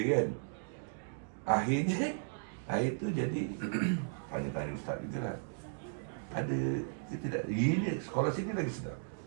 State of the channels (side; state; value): left; silent; digital silence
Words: Akhirnya, air tu jadi, tanya-tanya ustaz juga lah. Ada ke tidak? Ini sekolah sini lagi sedap.